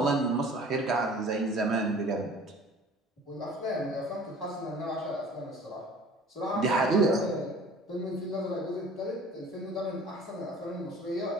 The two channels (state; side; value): normal; both; correlation 0.47